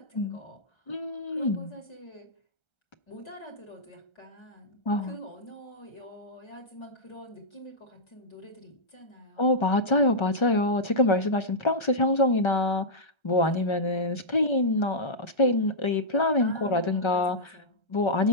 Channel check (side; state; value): right; late; 1.3 ms